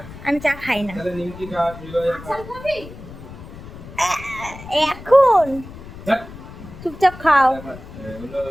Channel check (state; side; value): noise; left; rumble, 15 dB below the sound